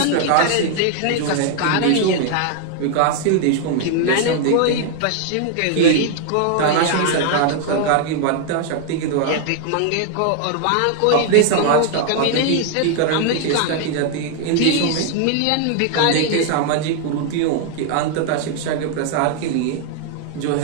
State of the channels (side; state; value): both; different; correlation 0.00